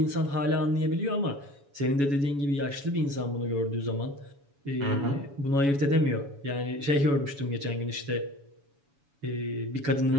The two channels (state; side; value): late; left; 7.1 ms